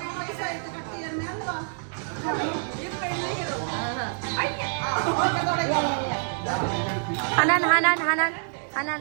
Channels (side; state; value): left; silent; digital silence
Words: ഹനാൻ ഹനാൻ ഹനാൻ ഹനാൻ